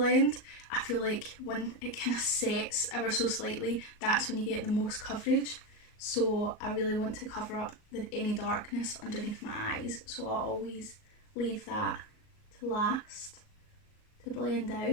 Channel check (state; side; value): late; right; 38 ms